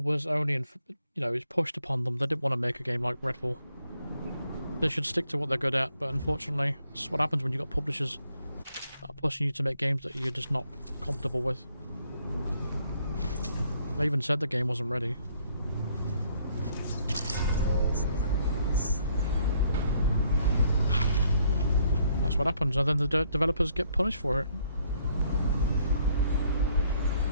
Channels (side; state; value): both; inverted; correlation -0.68